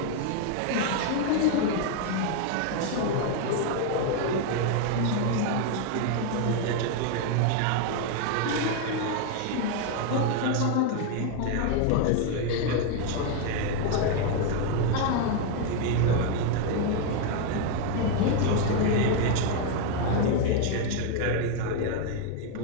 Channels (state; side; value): different; both; correlation 0.01